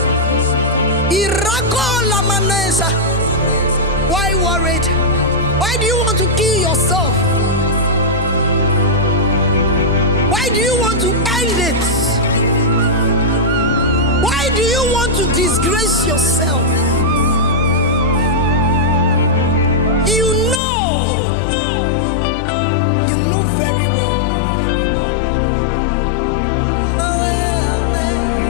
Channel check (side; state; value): right; drops out; at 20.6 s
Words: Irako Lamanesa. Why worried? Why do you want to kill yourself? Why do you want to end it? Why do you want to disgrace yourself? You know very well.